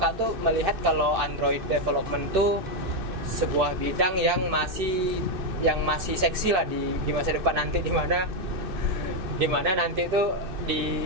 tuh melihat kalau Android development tuh sebuah bidang yang masih seksi lah di masa depan nanti, di mana nanti tuh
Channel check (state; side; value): late; left; 2.6 ms